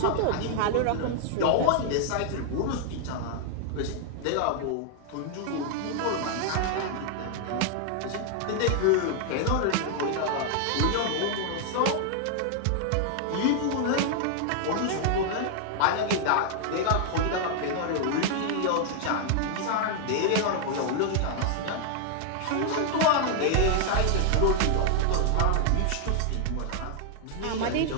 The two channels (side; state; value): both; different; correlation 0.00